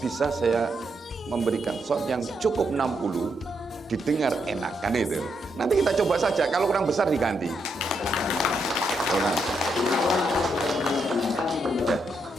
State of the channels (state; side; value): normal; both; correlation 0.80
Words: saya memberikan SON yang cukup 60, didengar enak kan itu. Nanti kita coba saja, kalau kurang besar diganti. Ya.